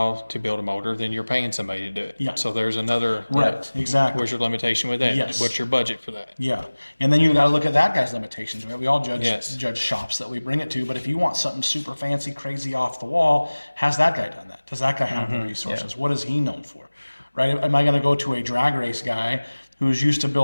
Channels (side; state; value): both; inverted; correlation -1.00